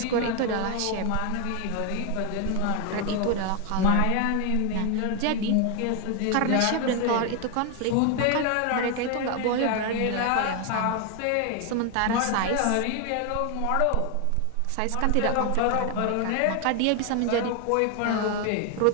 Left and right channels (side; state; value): both; different; correlation 0.01